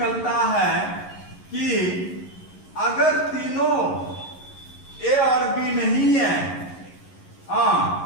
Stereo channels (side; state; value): right; late; 11 ms